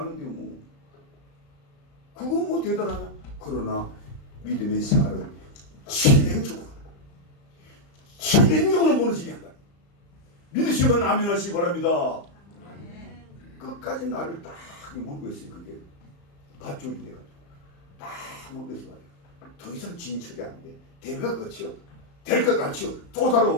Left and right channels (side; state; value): right; late; 35 ms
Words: 뭐. 그건 뭐 대단하냐? 그러나 믿음의 생활은 진행적으로 무너지게 한다. 믿으시면 아멘 하시기 바랍니다. 끝까지 나를 딱 물고 있어요. 그게 밧줄이 돼가지고 딱 물고 있어요. 더 이상 진척이 안 돼. 될 것 같죠? 될 것 같죠? 또